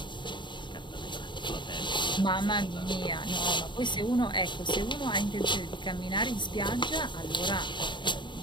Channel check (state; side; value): late; right; 0.23 ms